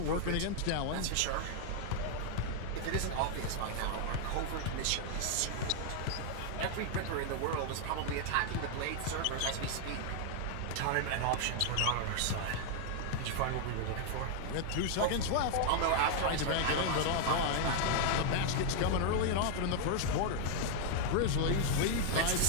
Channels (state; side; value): different; both; correlation 0.00